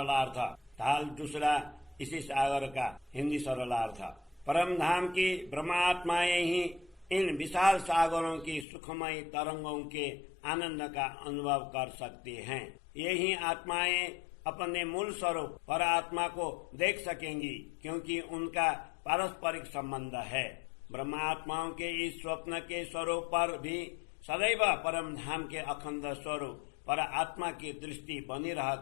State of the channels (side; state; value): right; drops out; at 8.7 s